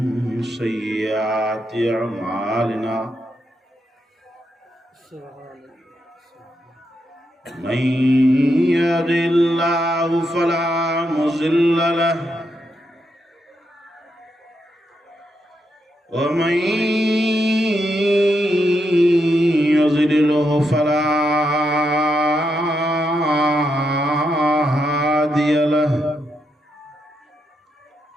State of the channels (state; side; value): normal; both; correlation 0.82